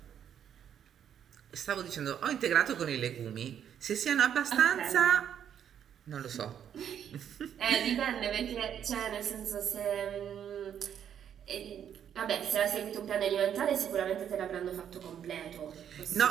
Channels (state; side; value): quieter; left; 9.1 dB